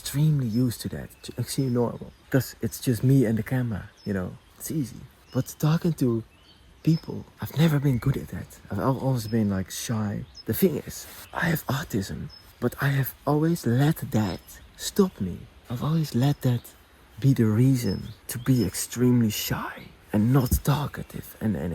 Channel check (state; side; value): identical; both; correlation 1.00